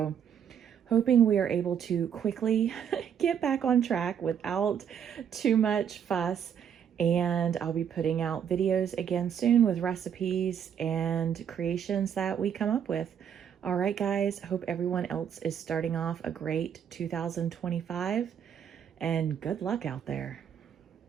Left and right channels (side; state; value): left; quieter; 8.3 dB